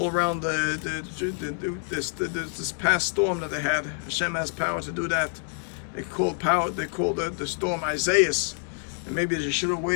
around this past storm that they had. Hashem has power to do that. They called the storm Isaias. And maybe they should have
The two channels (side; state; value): right; silent; 60 dB below the other